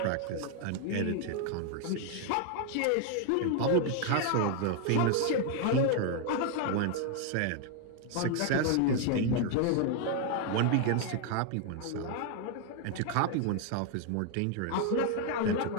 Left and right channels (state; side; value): different; both; correlation 0.00